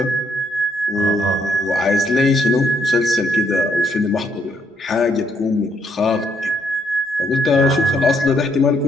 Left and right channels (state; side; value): normal; both; correlation 0.72